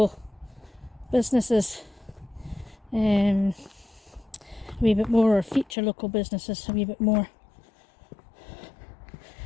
businesses a wee bit more, or feature local businesses a wee bit more,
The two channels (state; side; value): drops out; right; at 5.8 s